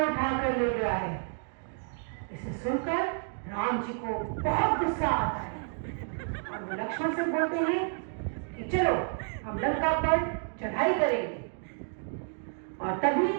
उठा कर ले गया है। इसे सुनकर राम जी को बहुत गुस्सा आता है और लक्ष्मण से बोलते हैं कि चलो हम लंका पर चढ़ाई करेंगे। और तभी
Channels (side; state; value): left; silent; 58 dB below the other